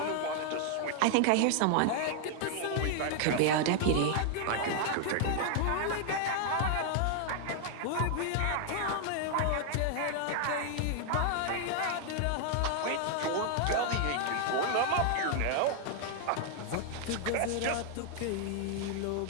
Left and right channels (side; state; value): both; different; correlation 0.00